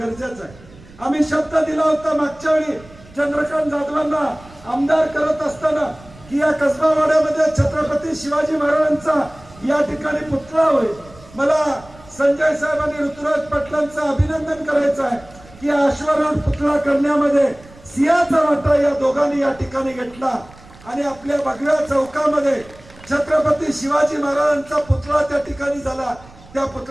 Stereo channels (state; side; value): noise; right; rumble, 22 dB below the sound